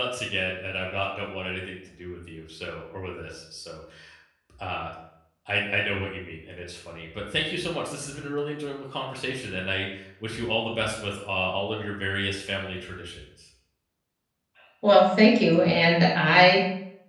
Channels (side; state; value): both; identical; correlation 1.00